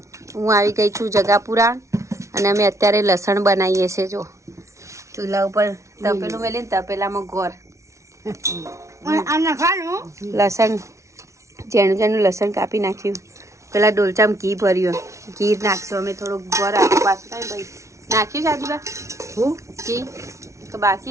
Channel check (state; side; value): late; left; 0.14 ms